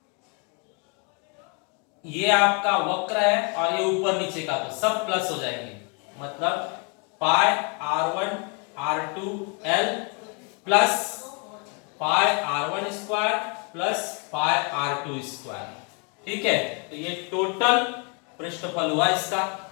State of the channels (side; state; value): right; quieter; 34.5 dB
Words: ये आपका वक्र है और ये ऊपर नीचे का, तो सब प्लस हो जाएंगे। मतलब पाई R1 R2 L plus pi R1 square plus pi R2 square. ठीक है। तो ये टोटल पृष्ठफल हुआ, इसका